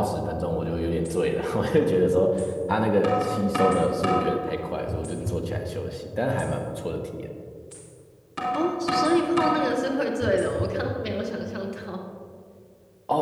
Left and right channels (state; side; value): identical; both; correlation 1.00